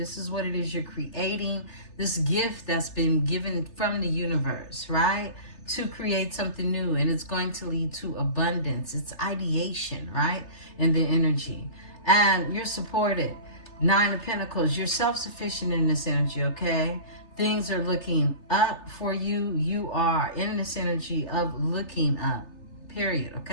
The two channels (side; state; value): right; late; 3.3 ms